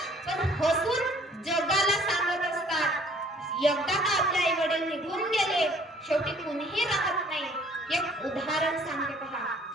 पण हसून जगाला सांगत असतात. एकदा का आपले आई वडील निघून गेले, शेवटी कोणीही राहत नाही. एक उदाहरण सांगते पहा.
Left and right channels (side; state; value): both; normal; correlation 0.57